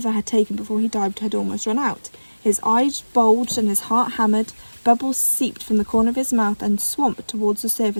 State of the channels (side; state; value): both; inverted; correlation -1.00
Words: had taken before he dived had almost run out. His eyes bulged and his heart hammered. Bubbles seeped from the corner of his mouth and swamped towards the